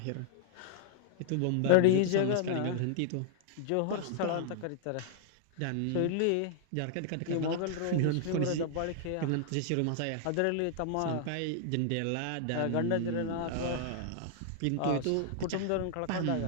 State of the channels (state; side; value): different; both; correlation -0.01